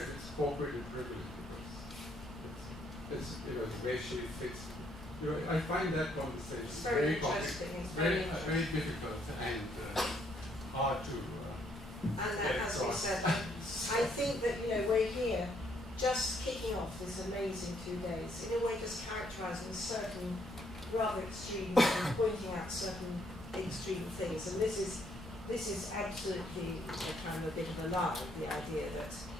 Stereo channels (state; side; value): normal; both; correlation 0.70